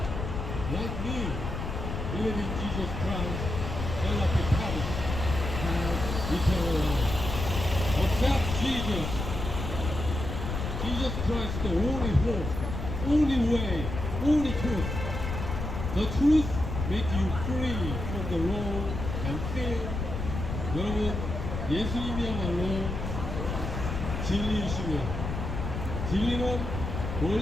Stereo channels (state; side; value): noise; left; rumble, 4 dB below the sound